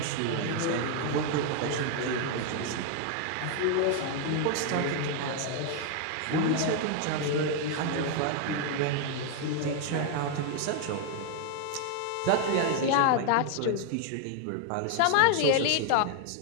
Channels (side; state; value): both; different; correlation 0.00